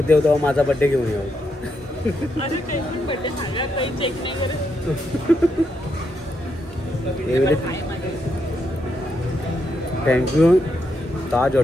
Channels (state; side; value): normal; both; correlation 0.80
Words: येऊ तेव्हा माझा बड्डे घेऊन येऊ. अरे काही पण बड्डे झाला काही चेक नाही करत. थँक्यू ताज